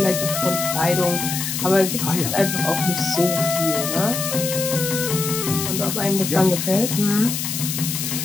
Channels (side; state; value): left; noise; hiss, 3 dB below the sound